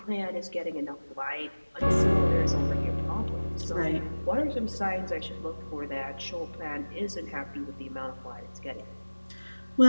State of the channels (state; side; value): inverted; both; correlation -1.00